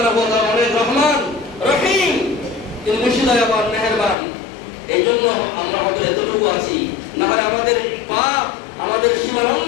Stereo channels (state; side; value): drops out; right; at 4.2 s